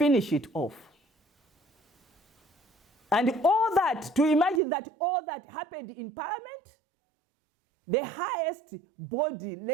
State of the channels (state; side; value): drops out; left; at 4.6 s